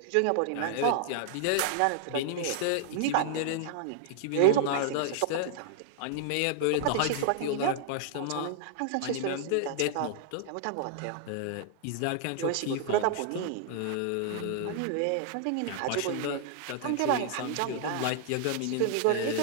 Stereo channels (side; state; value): both; different; correlation -0.01